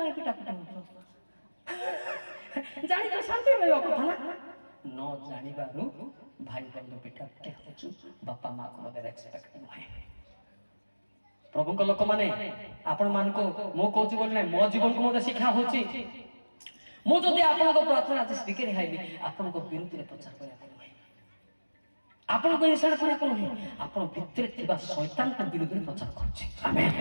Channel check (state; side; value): inverted; both; correlation -1.00